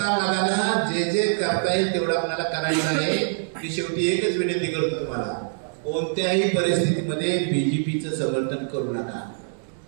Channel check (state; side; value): silent; left; digital silence